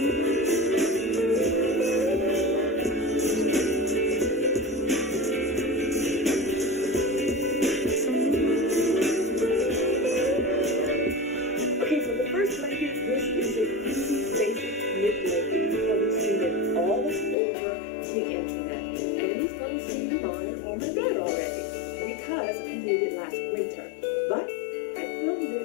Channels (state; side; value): drops out; right; at 17.4 s